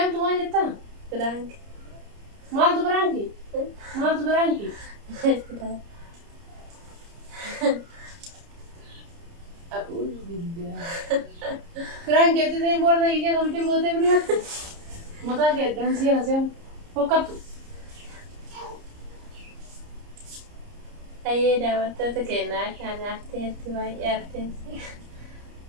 maal jettaa? Frank. Maaltu Franki? Maaltu Franki? A'uuzu billaahi. Franki ati ta'e boorsaa kee keessa hojii gootee biraatti. Mataa kee addaan siyaasee fokkattu. Ayyee daawwattoota keenyaa kan arteetti baay'ee arteetti.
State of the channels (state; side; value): late; left; 30 ms